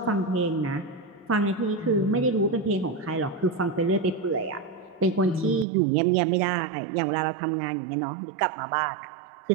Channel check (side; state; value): left; drops out; at 5.7 s